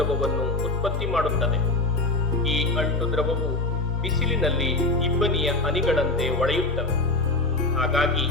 ಉತ್ಪತ್ತಿ ಮಾಡುತ್ತದೆ. ಈ ಅಂಟು ದ್ರವವು ಬಿಸಿಲಿನಲ್ಲಿ ಇಬ್ಬನಿಯ ಹನಿಗಳಂತೆ ಒಳೆಯುತ್ತವೆ. ಹಾಗಾಗಿ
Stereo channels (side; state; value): right; quieter; 3.2 dB